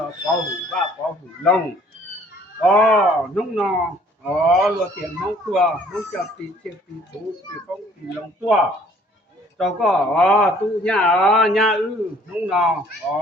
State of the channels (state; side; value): normal; both; correlation 0.57